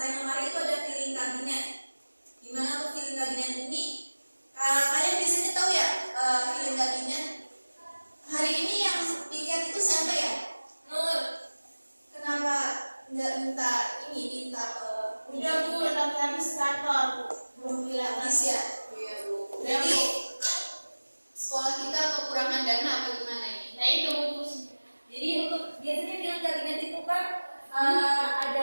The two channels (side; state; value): both; inverted; correlation -1.00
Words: lemari itu ada piling kabinet. Gimana untuk piling kabinet ini? Kalian biasanya tahu ya, piling kabinet. Hari ini yang piket itu siapa ya? Nur. Kenapa nggak minta Udah Bu, tapi habis kantor Bu. belum habis ya? Iya Bu. Jadi sekolah kita kekurangan dana apa gimana ini? Nah itu Bu. Jadi untuk biasanya piling kabinet itu kan ada